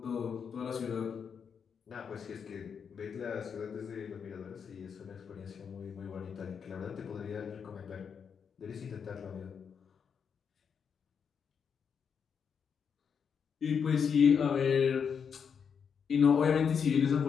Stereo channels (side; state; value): right; quieter; 6.8 dB